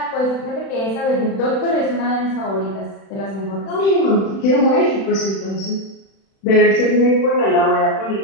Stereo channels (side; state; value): right; late; 36 ms